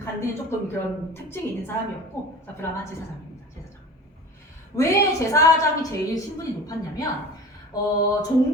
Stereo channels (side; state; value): both; normal; correlation 0.36